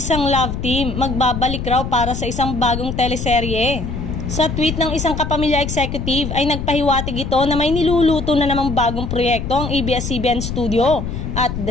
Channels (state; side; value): noise; left; rumble, 5 dB below the sound